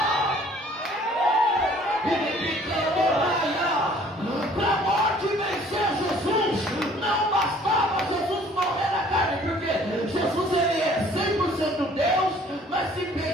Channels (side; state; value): both; normal; correlation 0.55